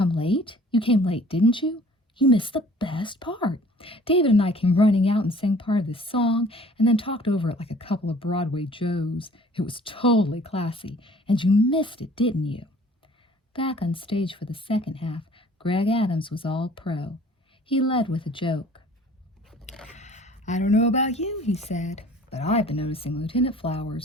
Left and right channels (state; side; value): normal; both; correlation 0.52